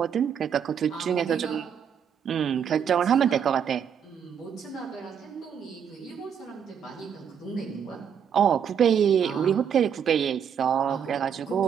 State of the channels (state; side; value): quieter; left; 7.9 dB